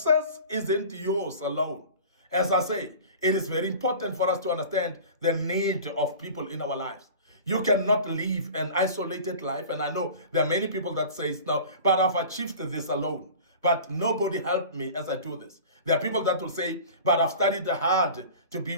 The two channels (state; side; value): inverted; both; correlation -0.39